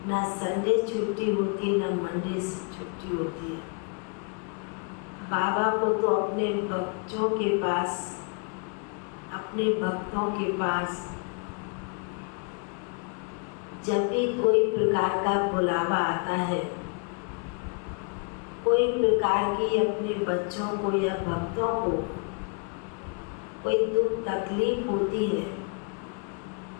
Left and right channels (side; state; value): right; quieter; 37.7 dB